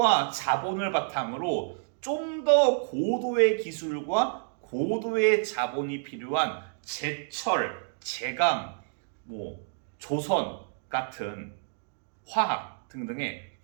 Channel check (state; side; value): silent; left; digital silence